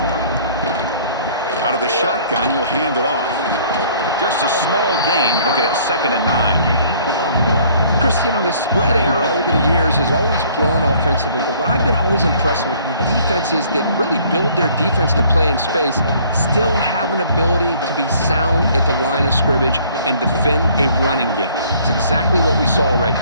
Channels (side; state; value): both; inverted; correlation -0.57